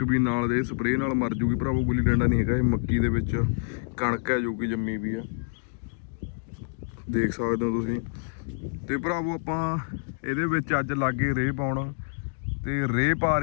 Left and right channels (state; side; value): silent; right; digital silence